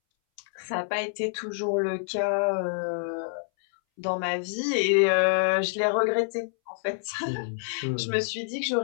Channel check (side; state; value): right; silent; 60 dB below the other